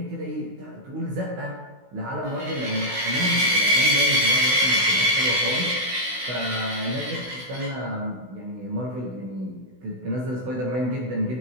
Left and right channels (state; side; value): late; left; 16 ms